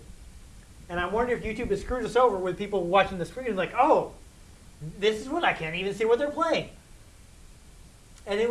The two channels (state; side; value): identical; both; correlation 1.00